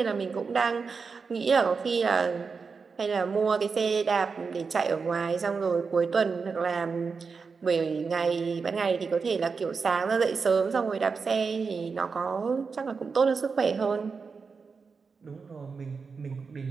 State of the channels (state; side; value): quieter; left; 5.1 dB